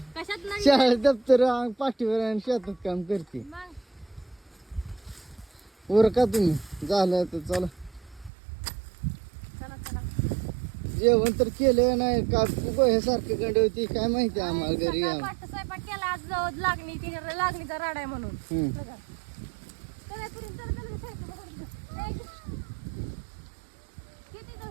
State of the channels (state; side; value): drops out; left; at 8.3 s